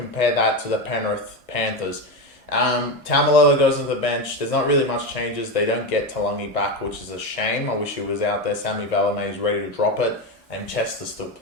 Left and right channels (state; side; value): normal; both; correlation 0.15